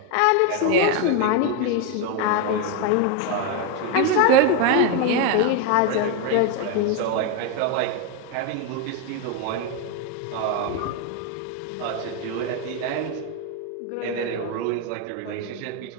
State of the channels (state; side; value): different; both; correlation 0.02